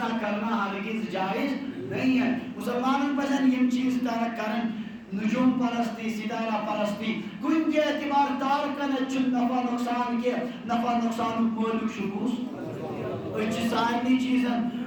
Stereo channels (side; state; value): both; identical; correlation 1.00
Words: کرنا ہرگز جائز نہیں ہے. مسلمانوں پسند یہ چیز ترک کرن. نجوم پرستی، ستارہ پرستی کن کے اعتبار تارکن چن نفع نقصان کے نفع نقصان مولک شکوس اچھ سارنی چیزن